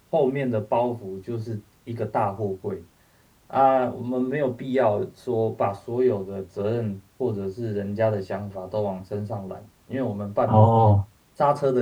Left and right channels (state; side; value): identical; both; correlation 1.00